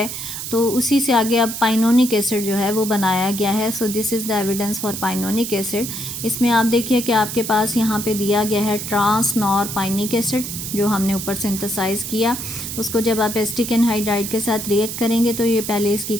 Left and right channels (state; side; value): noise; right; hiss, 6 dB below the sound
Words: तो उसी से आगे अब पाइनोनिक एसिड जो है वो बनाया गया है। So this is the evidence for pinonic acid. इसमें आप देखिए कि आपके पास यहाँ पे दिया गया है ट्रांस नॉरपाइनिक एसिड जो हमने ऊपर सिंथेसाइज किया। उसको जब आप एसिटिक एनहाइड्राइड के साथ रिएक्ट करेंगे तो ये पहले इसकी